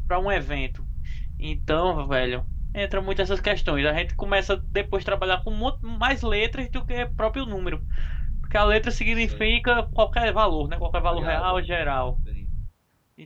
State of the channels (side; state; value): both; identical; correlation 1.00